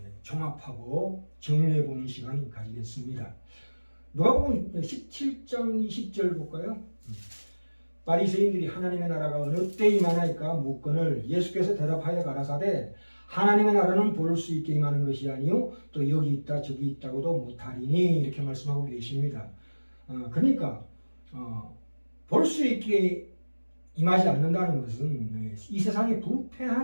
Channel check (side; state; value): both; inverted; correlation -1.00